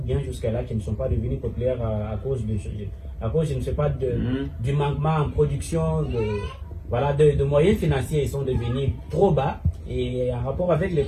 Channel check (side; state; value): both; identical; correlation 1.00